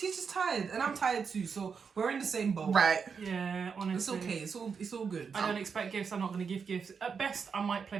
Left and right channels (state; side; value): quieter; left; 6.0 dB